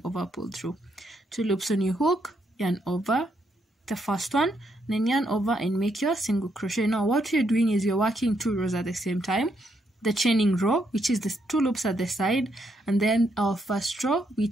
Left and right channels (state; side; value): normal; both; correlation 0.77